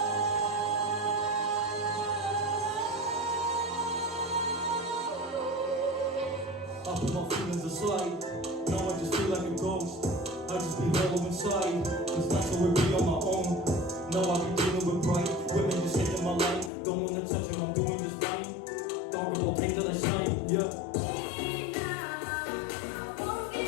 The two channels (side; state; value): right; drops out; at 16.7 s